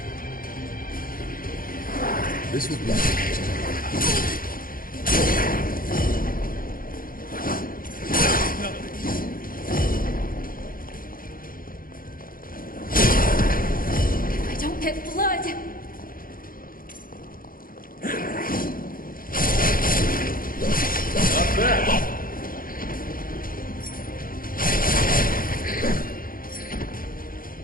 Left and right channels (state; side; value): late; right; 0.41 ms